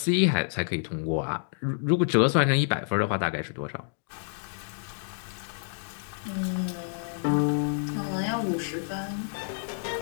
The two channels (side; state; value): right; silent; digital silence